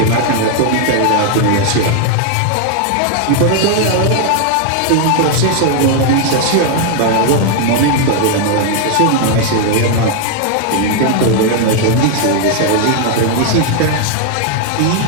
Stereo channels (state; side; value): different; both; correlation 0.00